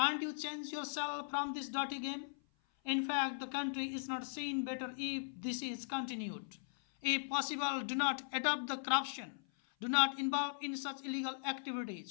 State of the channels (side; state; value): right; silent; 52 dB below the other